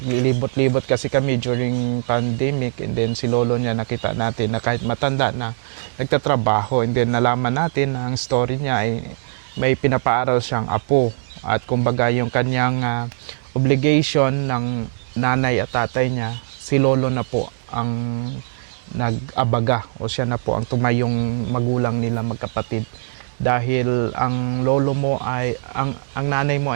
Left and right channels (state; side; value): silent; left; digital silence